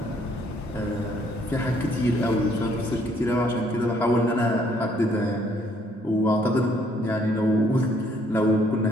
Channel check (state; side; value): normal; both; correlation 0.66